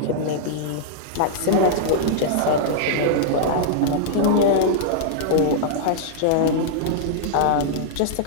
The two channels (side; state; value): both; different; correlation -0.02